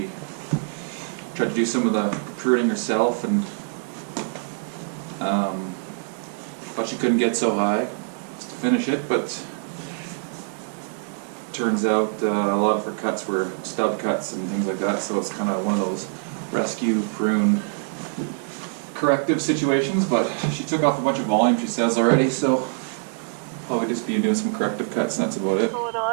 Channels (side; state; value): left; silent; digital silence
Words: tried to do some of the pruning herself and thought she couldn't get so high just to finish it, but turns out a lot of her cuts were stub cuts and things like that, so it's kind of one of those rescue prune corrective situations. But she took off a bunch of volume, she says, already, so probably just be doing some corrective cuts and that's about it. Going